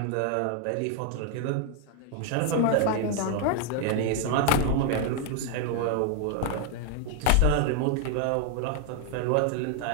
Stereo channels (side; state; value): both; different; correlation 0.00